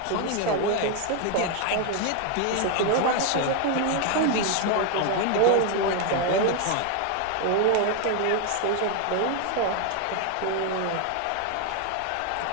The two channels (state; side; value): different; both; correlation 0.01